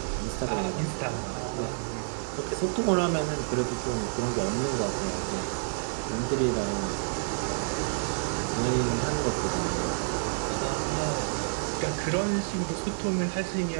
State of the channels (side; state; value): left; silent; 59 dB below the other